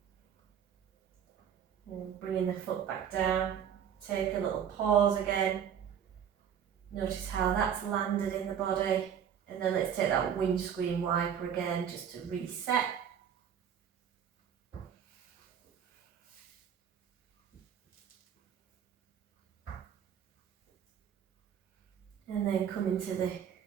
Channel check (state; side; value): quieter; left; 8.5 dB